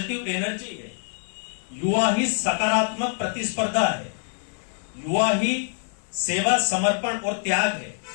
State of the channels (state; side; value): silent; right; 59 dB below the other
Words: एनर्जी है, युवा ही सकारात्मक प्रतिस्पर्धा है, युवा ही सेवा, समर्पण और त्याग है,